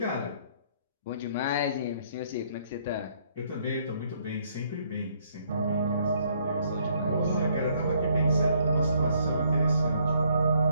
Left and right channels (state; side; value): inverted; both; correlation -0.67